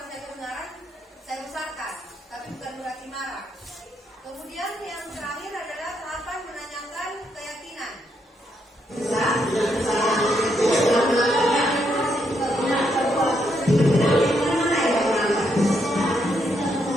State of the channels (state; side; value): normal; both; correlation 0.77